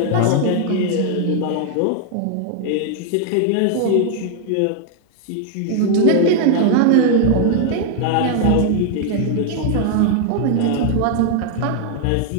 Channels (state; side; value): different; both; correlation 0.00